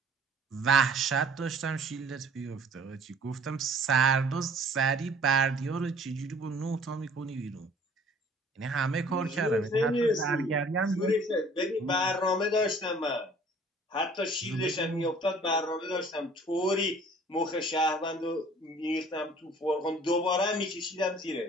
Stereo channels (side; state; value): both; normal; correlation 0.53